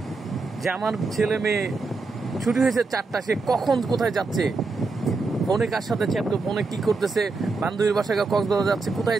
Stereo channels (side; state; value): left; quieter; 3.9 dB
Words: যে আমার ছেলে মেয়ে ছুটি হয়েছে 4টা, সে কখন কোথায় যাচ্ছে, ফোনে কার সাথে চ্যাট, ফোনে কি করতেছে, বান্ধবীর বাসায় কক্সবাজার যাচ্ছে,